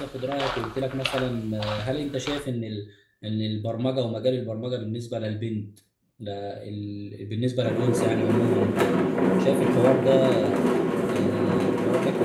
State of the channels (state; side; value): identical; both; correlation 1.00